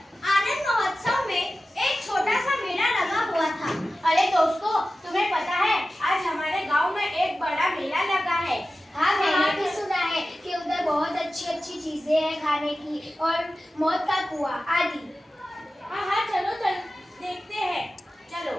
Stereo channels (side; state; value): both; normal; correlation 0.95